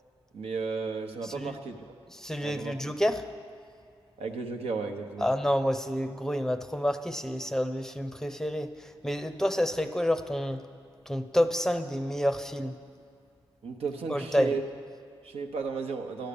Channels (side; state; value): both; normal; correlation 0.91